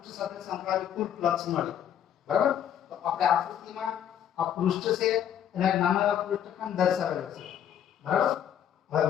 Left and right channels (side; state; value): right; quieter; 9.8 dB